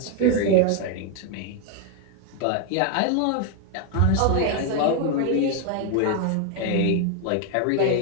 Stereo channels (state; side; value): different; both; correlation 0.01